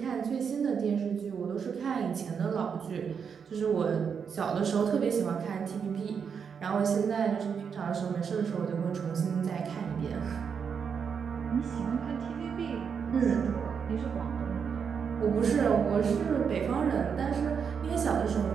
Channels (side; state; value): left; quieter; 6.7 dB